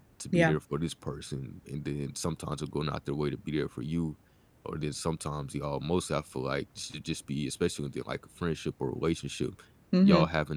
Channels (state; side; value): identical; both; correlation 1.00